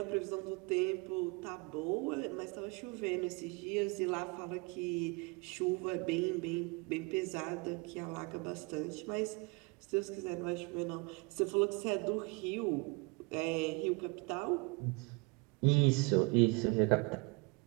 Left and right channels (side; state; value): left; quieter; 28.7 dB